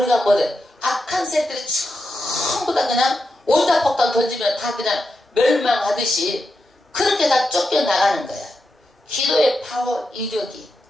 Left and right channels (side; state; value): both; normal; correlation 0.87